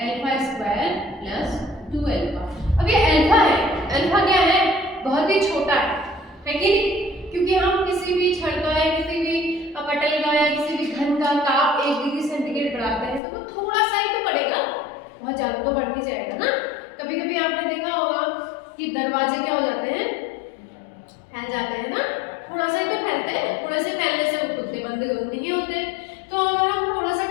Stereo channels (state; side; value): drops out; right; at 13.2 s